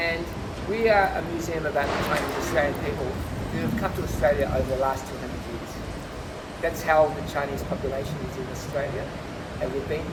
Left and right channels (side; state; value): both; identical; correlation 1.00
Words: we are a museum about the Chinese Australian people who have come to Australia over the last 200 years. That's how the Chinese population is in Australia, and we've been